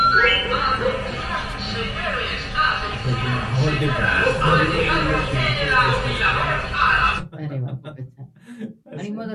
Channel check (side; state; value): both; identical; correlation 1.00